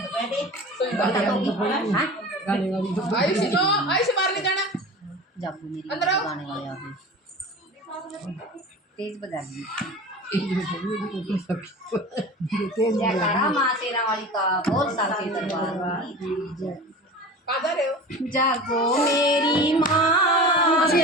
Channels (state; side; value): normal; both; correlation 0.35